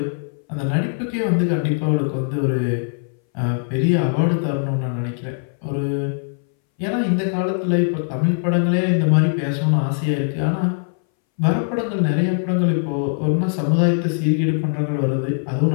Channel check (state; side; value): silent; right; 62 dB below the other